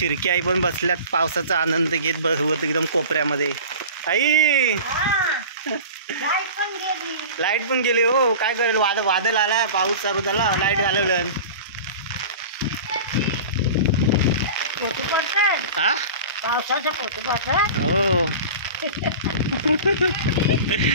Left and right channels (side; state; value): both; inverted; correlation -0.35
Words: आई पण बसल्यात पावसाचा आनंद घेत बसवत एकदम कोपऱ्यामध्ये. आई लाईट पण गेली हो, काय करेल? वादळ आलाय, पाऊस चालू झाला, लाईट घालवलं. हा हो.